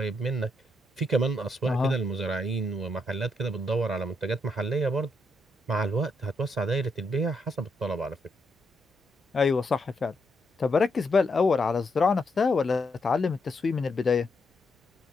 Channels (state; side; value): normal; both; correlation 0.79